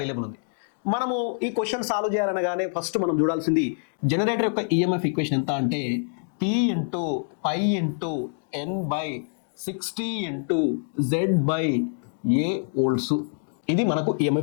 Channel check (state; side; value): silent; right; digital silence